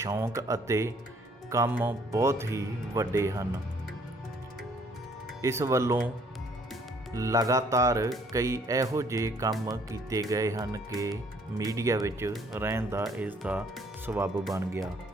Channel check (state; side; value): normal; both; correlation 0.62